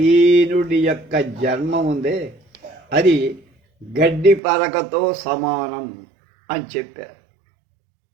యొక్క జన్మ ఉందే అది గడ్డి పరకతో సమానం అని చెప్పారు.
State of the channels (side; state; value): left; drops out; at 4.4 s